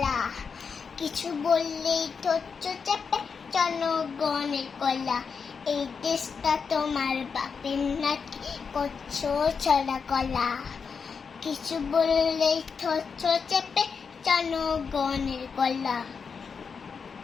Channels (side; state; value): right; quieter; 5.7 dB